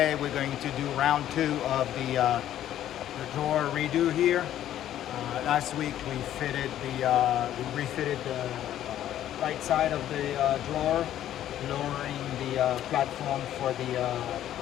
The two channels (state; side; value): quieter; right; 11.8 dB